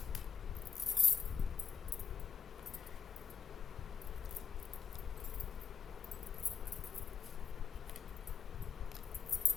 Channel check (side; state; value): right; quieter; 6.6 dB